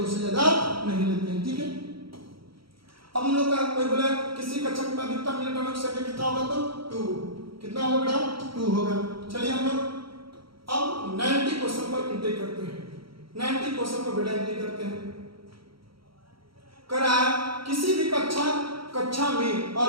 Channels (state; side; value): late; left; 0.74 ms